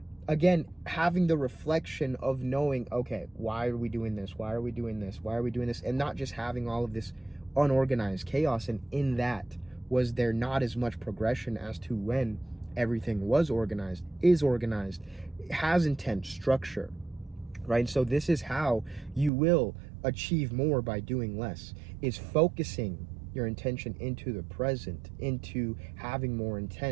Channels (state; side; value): drops out; left; at 19.3 s